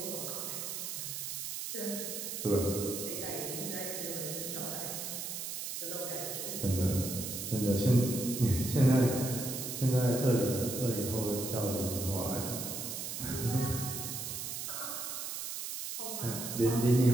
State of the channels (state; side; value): noise; right; hiss, 5 dB below the sound